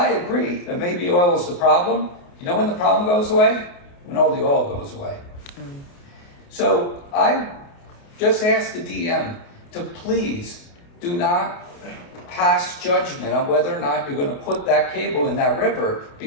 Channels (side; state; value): right; late; 29 ms